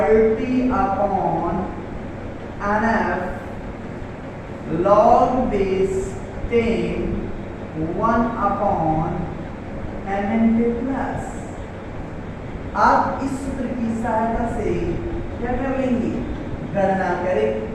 upon NF log base 10 1 upon Mn के प्लस। आप इस सूत्र की सहायता से क्या कर लेंगे? गणना करें।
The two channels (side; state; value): both; identical; correlation 1.00